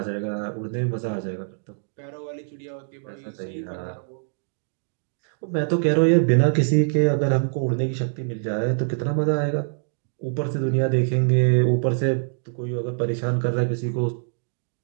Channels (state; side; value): silent; left; digital silence